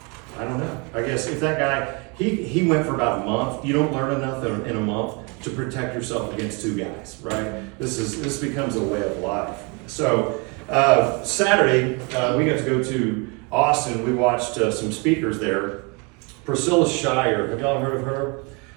I don't know, I guess if that guy, he went for about a month. You don't learn enough in a month to protect yourself against 2 guys, right? This becomes a way of life. So, Saturday, we got to go to Austin. We watched some speakers there. Priscilla Shirer, have y'all heard of her?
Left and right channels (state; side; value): quieter; left; 31.5 dB